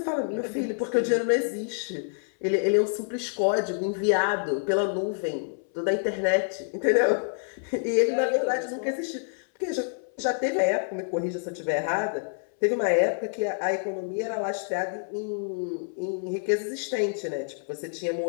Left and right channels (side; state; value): right; silent; 60 dB below the other